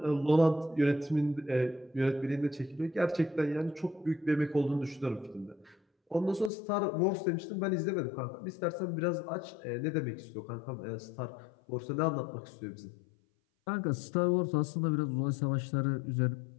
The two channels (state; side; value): drops out; right; at 6.5 s